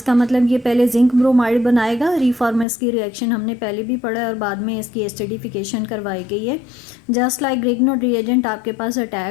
मतलब ये पहले जिंक ब्रोमाइड बनाएगा। रिफॉर्मेस की रिएक्शन हमने पहले भी पढ़ा है और बाद में इसकी एसिडिफिकेशन करवाई गई है। जस्ट लाइक ग्रिग्नोड रिएजेंट आपके पास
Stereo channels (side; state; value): right; drops out; at 2.7 s